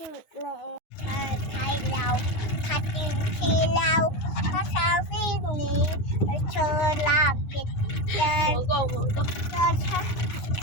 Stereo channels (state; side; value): late; right; 9.5 ms